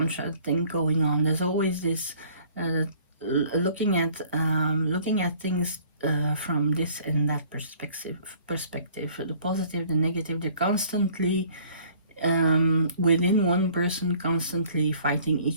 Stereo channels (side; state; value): both; inverted; correlation -0.55